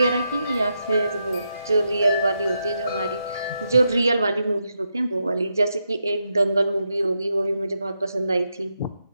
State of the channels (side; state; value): both; inverted; correlation -0.83